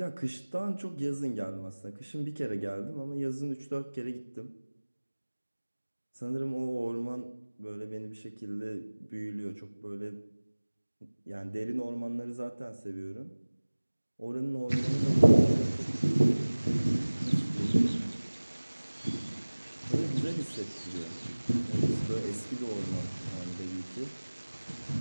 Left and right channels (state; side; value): inverted; both; correlation -1.00